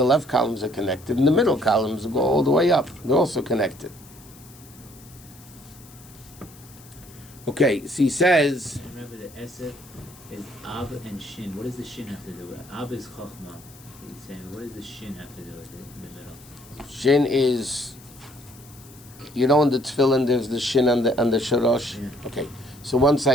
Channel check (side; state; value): left; noise; hiss, 22 dB below the sound